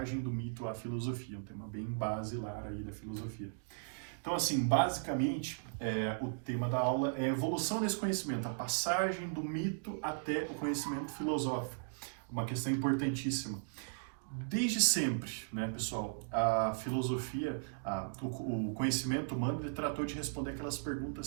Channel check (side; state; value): left; silent; digital silence